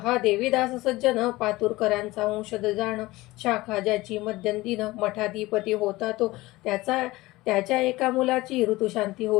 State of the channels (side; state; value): right; quieter; 19.5 dB